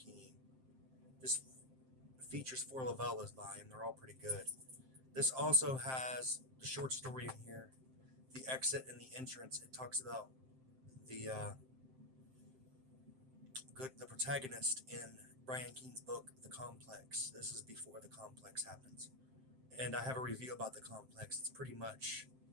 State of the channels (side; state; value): left; late; 7.6 ms